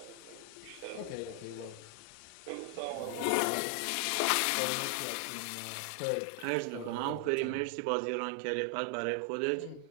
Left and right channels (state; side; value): different; both; correlation 0.00